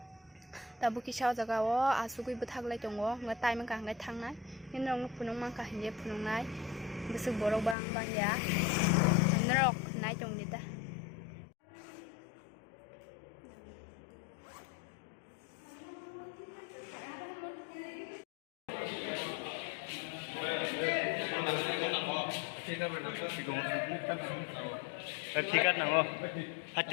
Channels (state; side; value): drops out; right; at 7.8 s